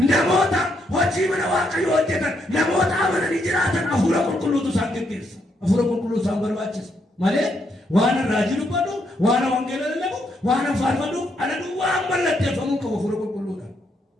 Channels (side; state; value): both; normal; correlation 0.77